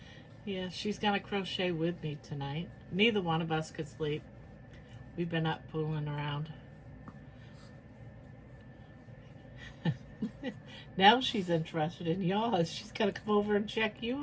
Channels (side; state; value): both; identical; correlation 1.00